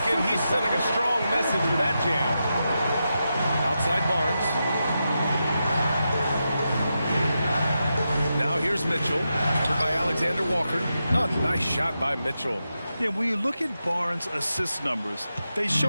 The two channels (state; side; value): inverted; both; correlation -0.88